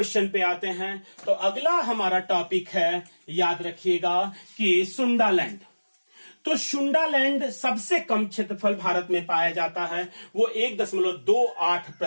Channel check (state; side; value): inverted; both; correlation -1.00